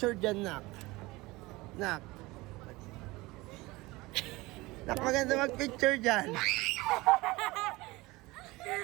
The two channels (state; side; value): quieter; left; 21.3 dB